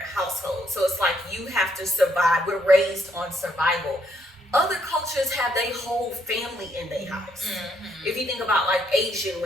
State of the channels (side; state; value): both; normal; correlation 0.72